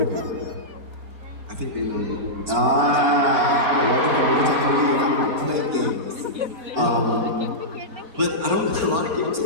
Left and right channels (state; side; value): late; left; 4.4 ms